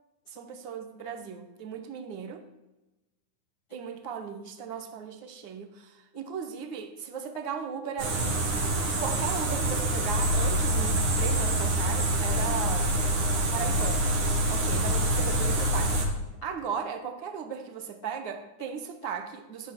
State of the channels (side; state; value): right; late; 9.7 ms